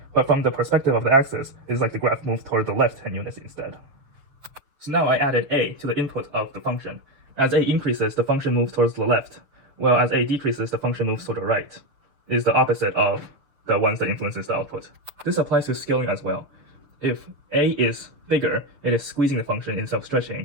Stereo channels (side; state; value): left; late; 7.1 ms